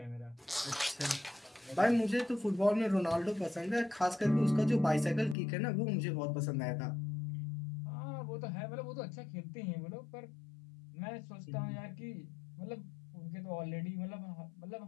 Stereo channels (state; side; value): drops out; right; at 5.4 s